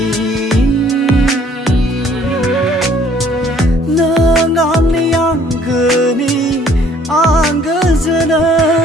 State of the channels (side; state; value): both; normal; correlation 0.59